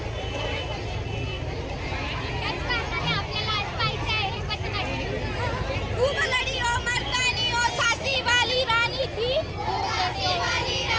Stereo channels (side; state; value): both; identical; correlation 1.00